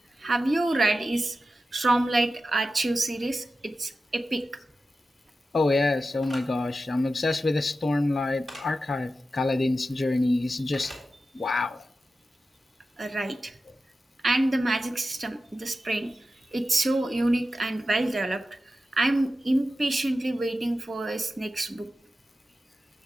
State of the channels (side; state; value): both; normal; correlation 0.93